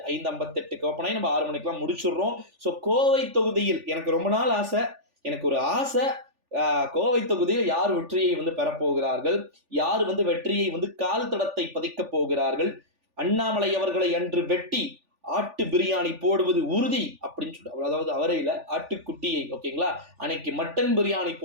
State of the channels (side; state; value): left; late; 3.4 ms